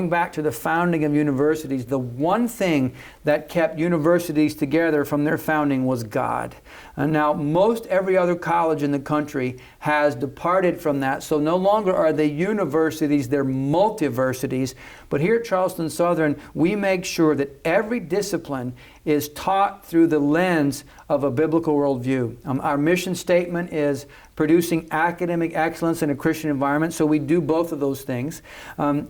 back to the founding of universities, the one thing that kept universities together from their founding was God. And now most every other college in the country has departed from that, so no longer are they universities, they're multiversities. But here at Charleston Southern, we make sure that every discipline is taught through the lens of a biblical worldview. Our mission statement is producing academic excellence in a Christian environment, so we do both of those things.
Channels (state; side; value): identical; both; correlation 1.00